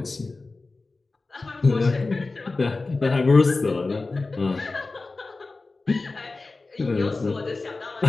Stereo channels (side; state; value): right; quieter; 3.6 dB